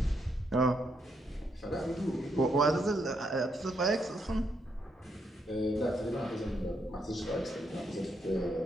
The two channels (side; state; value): both; normal; correlation 0.77